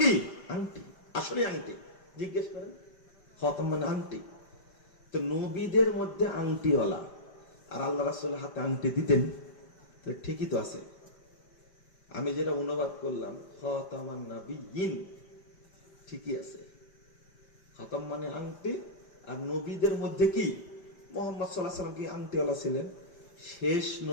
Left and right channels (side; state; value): right; late; 5.2 ms